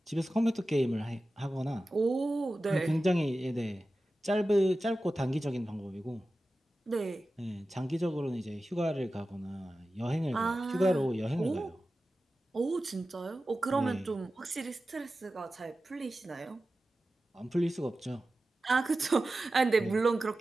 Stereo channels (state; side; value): normal; both; correlation 0.94